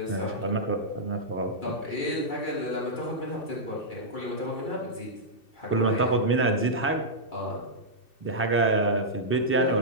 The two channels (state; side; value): late; right; 2.7 ms